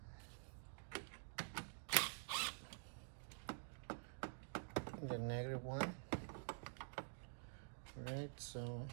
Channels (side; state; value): left; silent; digital silence